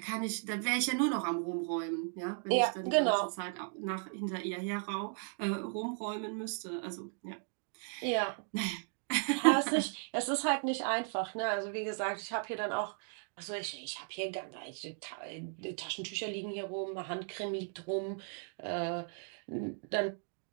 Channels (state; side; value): silent; left; 54 dB below the other